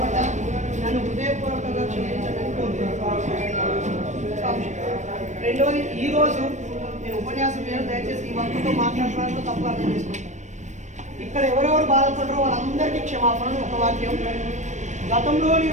నన్ను హృదయపూర్వకంగా క్షమించడానికి కోరుకుంటున్నాను. రెండోది, ఈరోజు నేను ఉపన్యాసం మీద దయచేసి ఈ వర్గంతో మాట్లాడడానికి తప్పు అర్థం చేసుకుంటాను. ఇక్కడ ఎవరెవరు బాధపడరో వాళ్ళందరికీ క్షమాపణ. ఒక వాక్యం, గతంలో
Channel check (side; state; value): left; late; 0.34 ms